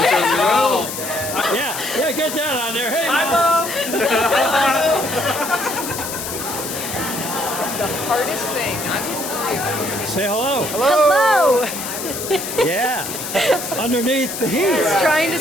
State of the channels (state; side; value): noise; left; hiss, 6 dB below the sound